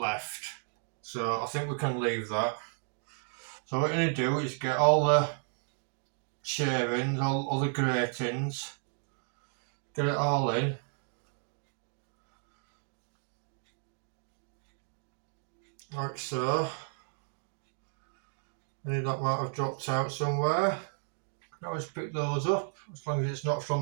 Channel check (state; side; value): silent; left; 56 dB below the other